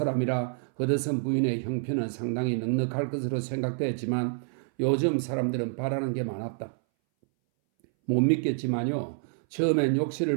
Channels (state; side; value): silent; left; 59 dB below the other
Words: 허드슨 부인의 형편은 상당히 넉넉할 것으로 생각되었지만 요즘 사람들은 바라는 게 많았다. 못 믿겠지만요. 처음엔 욕실을